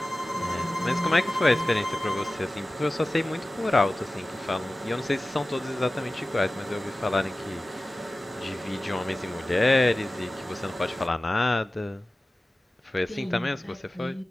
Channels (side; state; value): both; normal; correlation 0.96